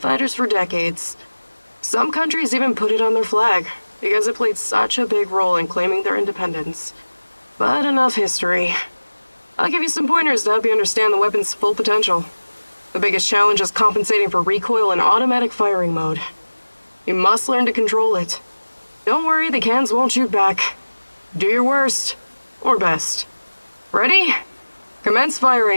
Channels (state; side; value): inverted; both; correlation -1.00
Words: for decades. Some countries even put it on their flag, because it played such a big role in claiming their independence. But enough history. I'll give you some pointers to help you understand the weapon's full potential. The biggest challenge is compensating for recoil in automatic firing mode. You must learn to control it. Don't worry, the cans won't shoot back. Do your worst. Or best. Ready? Commence